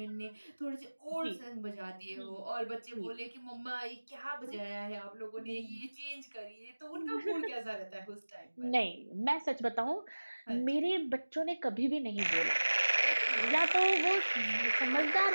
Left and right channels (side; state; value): both; inverted; correlation -1.00